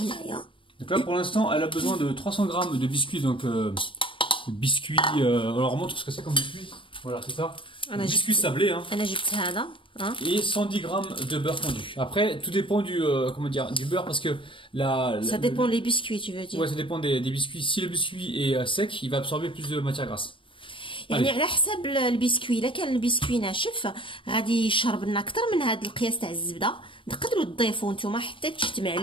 Donc là pour l'instant elle a besoin de 300 grammes de biscuits, donc biscuits, alors on montre ce que c'est comme biscuit, voilà c'est ça, biscuits sablés hein. Et 110 grammes de beurre fondu. Après tout dépend du, comment dire, du beurre parce que ça dépend des biscuits tu veux dire. Ouais ça dépend des biscuits, si le biscuit est sec il va absorber plus de matière grasse. يعني على حسب البسكوي، الا كان البسكوي ناشف غادي يشرب لنا اكثر من هذا القياس تاع الزبده، تقدروا تضيفوا نتوما حتى تجتمع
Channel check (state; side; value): late; right; 0.25 ms